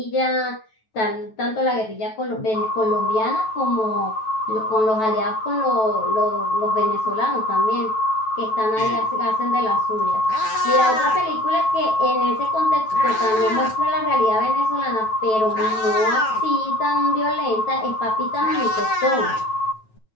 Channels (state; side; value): late; right; 9.2 ms